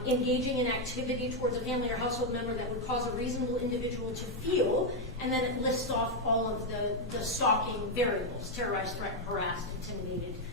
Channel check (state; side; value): normal; both; correlation 0.02